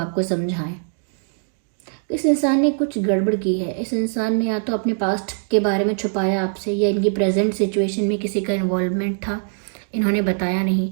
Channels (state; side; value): silent; left; digital silence